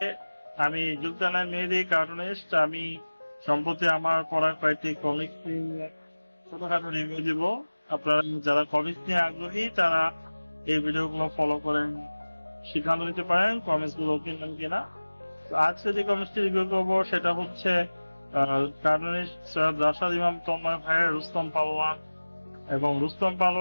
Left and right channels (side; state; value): both; inverted; correlation -1.00